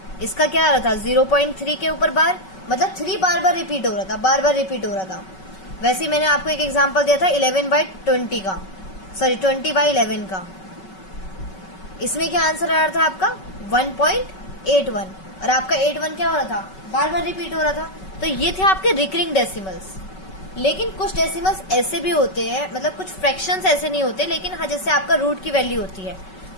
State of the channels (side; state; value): right; late; 5.3 ms